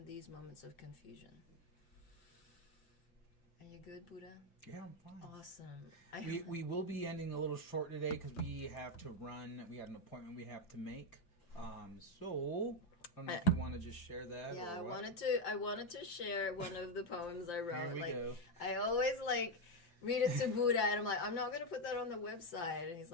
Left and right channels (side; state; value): right; late; 5.8 ms